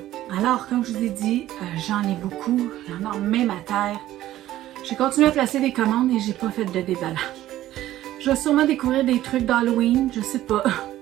alors comme je vous ai dit, j'en ai beaucoup, j'en ai même à terre. J'ai continué à placer des commandes et j'ai pas fait de déballage. Je vais sûrement découvrir des trucs d'Halloween, je sais pas,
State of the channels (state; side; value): quieter; left; 14.0 dB